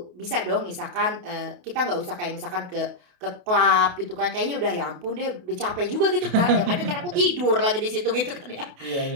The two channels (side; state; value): left; late; 28 ms